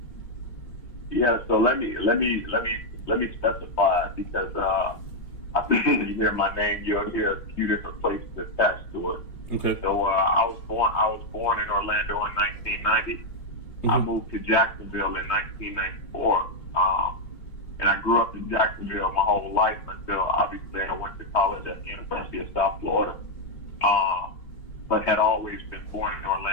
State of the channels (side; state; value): right; late; 3.2 ms